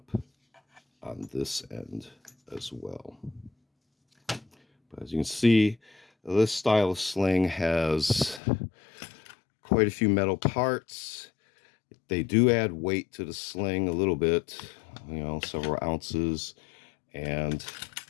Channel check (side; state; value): right; drops out; at 8.4 s